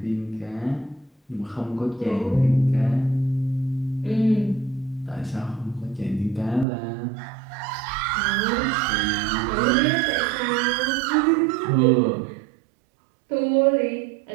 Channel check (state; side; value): drops out; left; at 6.7 s